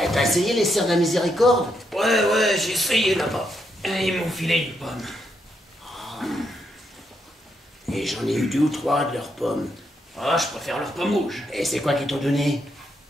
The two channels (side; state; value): both; normal; correlation 0.79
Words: T'as essayé les sœurs de la miséricorde? Ouais, j'ai essayé là-bas. Et ils m'ont filé une pomme. Et j'en ai eu 2 ou 3 de leurs pommes. Ah, je préfère leurs pommes rouges. Et c'est quoi qu'ils t'ont donné?